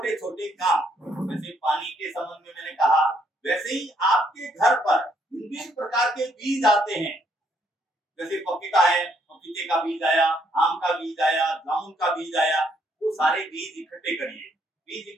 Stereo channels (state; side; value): normal; both; correlation 0.71